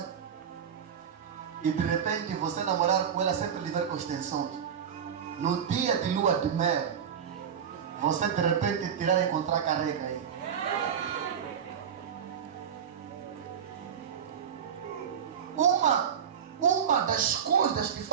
e de repente você namorar com ela sempre lhe ver com extensões. No dia de lua de mel, você de repente tirar e encontrar careca aí. Uma das coisas que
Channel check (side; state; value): left; quieter; 7.9 dB